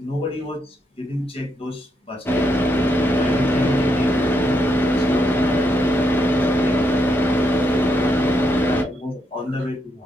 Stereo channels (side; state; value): both; normal; correlation 0.78